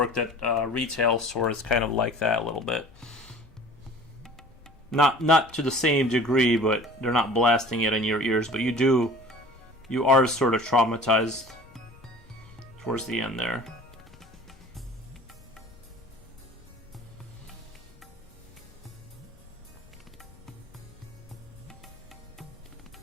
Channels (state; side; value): noise; left; rumble, 25 dB below the sound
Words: at a retail store, it's kind of like that a little bit. Not to the same degree, but they're not blasting it in your ears. But you are sort of traumatized towards the end there.